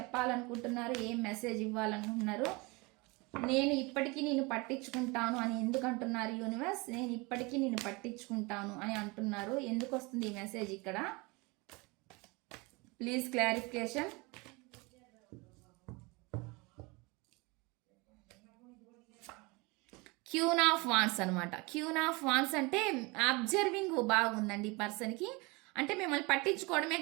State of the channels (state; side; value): quieter; left; 26.4 dB